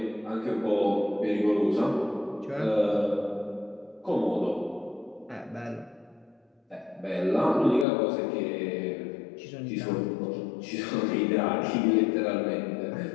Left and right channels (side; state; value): right; drops out; at 7.9 s